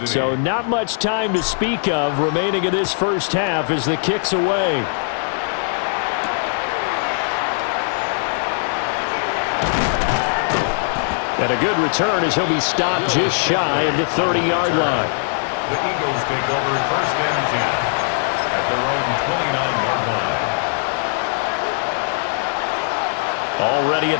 So not much time to speak of remaining in this first half as the kick's away. And a good return as he'll be stopped just shy of the 30-yard line. The Eagles take over first and 10 at their own 29-yard line. Already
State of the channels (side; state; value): right; silent; digital silence